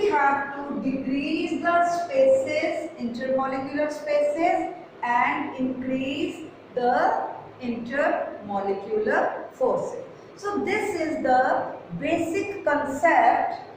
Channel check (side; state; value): both; identical; correlation 1.00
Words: have to decrease the spaces, intermolecular spaces, and increase the intermolecular forces. So this is the basic concept